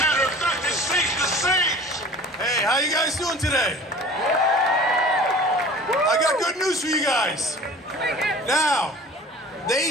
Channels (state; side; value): normal; both; correlation 0.43